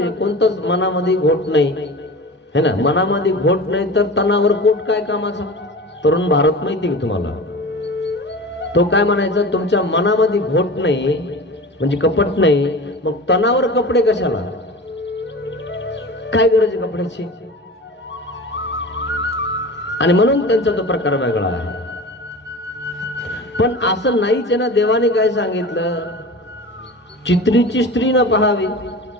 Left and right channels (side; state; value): both; normal; correlation 0.34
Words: आहे. कोणतंच मनामध्ये घोट नाही है ना. मनामध्ये घोट नाही तर तणावर पोट काय कामाचा. तरुण भारत माहिती का तुम्हाला, तो काय म्हणायचा, तुमच्या मनामध्ये घोट नाही म्हणजे कपट नाही, मग तणावर कपडे कशाला, काय गरज आहे कपड्याची. आणि म्हणून त्यांचा तो प्रकार वेगळा आहे. पण असं नाहीच आहे ना. देवाने काय सांगितलं, चित्रीची स्त्री न पाहावी.